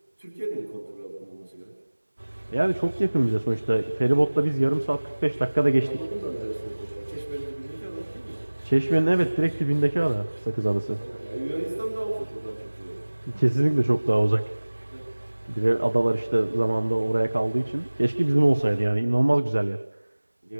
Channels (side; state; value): both; inverted; correlation -1.00